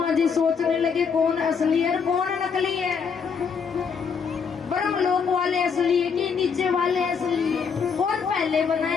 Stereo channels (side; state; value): right; quieter; 6.0 dB